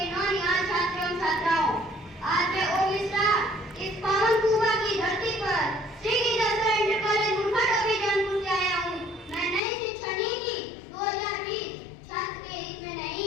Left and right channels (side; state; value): right; drops out; at 9.6 s